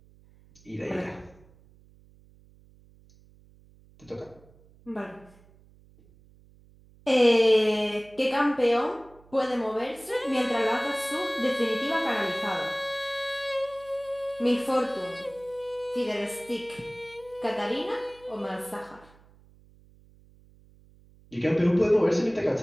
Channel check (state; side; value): noise; right; hum, 27 dB below the sound